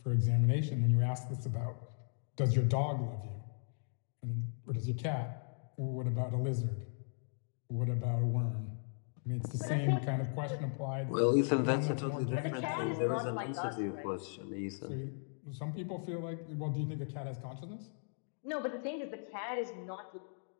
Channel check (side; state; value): right; silent; digital silence